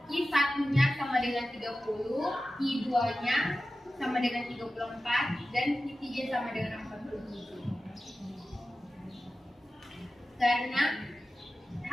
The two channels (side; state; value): both; normal; correlation 0.94